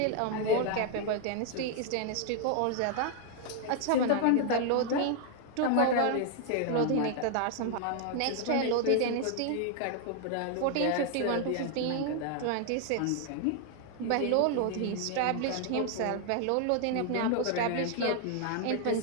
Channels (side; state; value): both; different; correlation 0.00